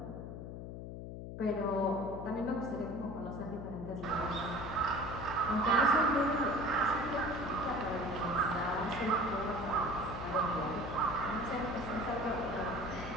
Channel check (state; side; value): noise; left; hum, 8 dB below the sound